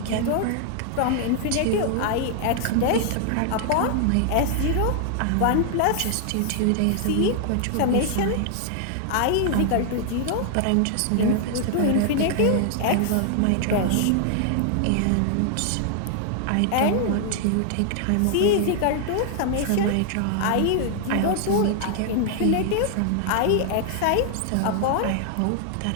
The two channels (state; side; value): different; both; correlation 0.00